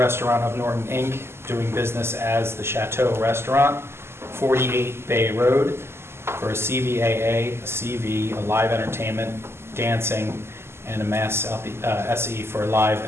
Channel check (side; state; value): left; late; 0.12 ms